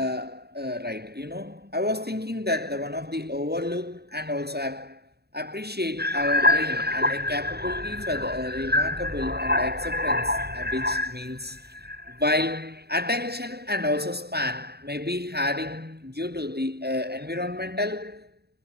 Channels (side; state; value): left; late; 0.47 ms